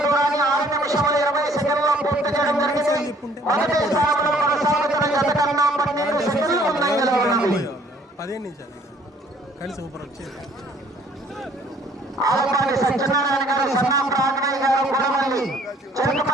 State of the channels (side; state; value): both; normal; correlation 0.59